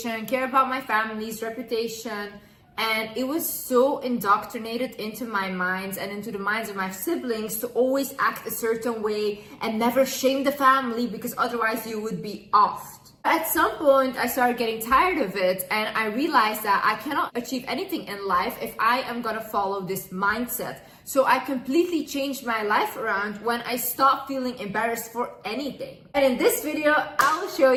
care about my family's reputation, and it was so indoctrinated into my minds and into the minds of my siblings to always act a certain way and never shame the family, because otherwise you would be offed. At some point, I started getting tired of it, and I realized that I cannot achieve anything in life if I am gonna follow this mindset. So I completely changed my life around when I stopped feeling embarrassed for anything. And in this video, I'll show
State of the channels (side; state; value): both; identical; correlation 1.00